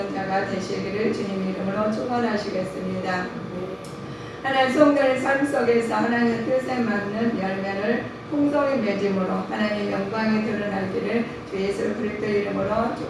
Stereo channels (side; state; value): both; identical; correlation 1.00